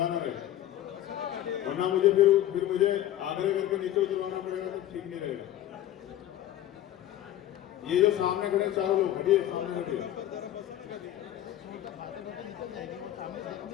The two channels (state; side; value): quieter; right; 12.7 dB